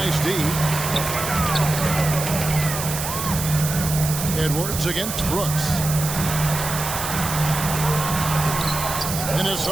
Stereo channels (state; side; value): noise; right; hiss, 5 dB below the sound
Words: D. Edwards against Brooks.